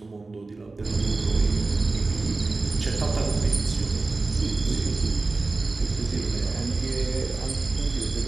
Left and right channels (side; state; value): left; quieter; 3.5 dB